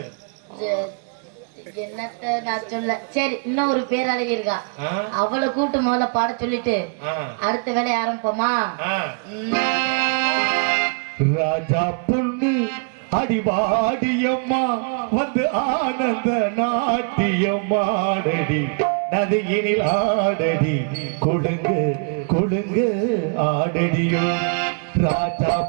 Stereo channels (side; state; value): left; quieter; 39.1 dB